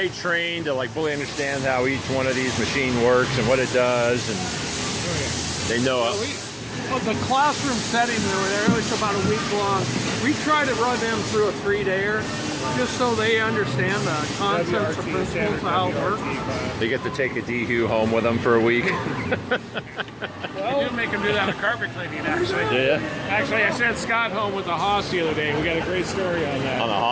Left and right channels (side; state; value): both; identical; correlation 1.00